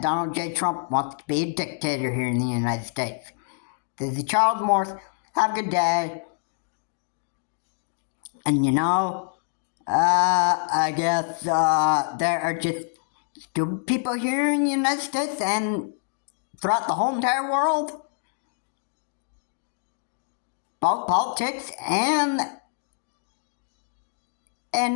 Donald J. Trump wants to be a dictator here in the United States. This is Charles Morse. Have a good day. And you know, I guess there are just stupid people here in the United States and throughout the whole entire world. Both politics and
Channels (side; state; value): right; silent; digital silence